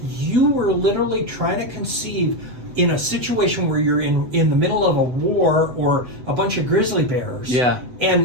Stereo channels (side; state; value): left; late; 8.0 ms